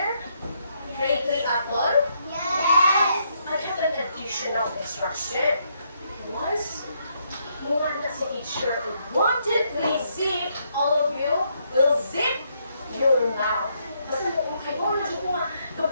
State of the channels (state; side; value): inverted; both; correlation -0.75